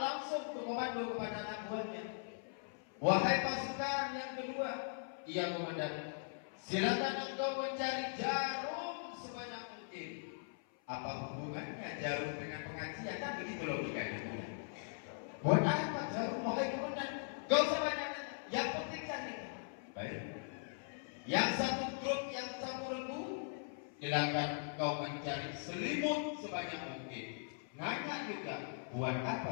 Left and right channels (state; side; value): silent; right; 51 dB below the other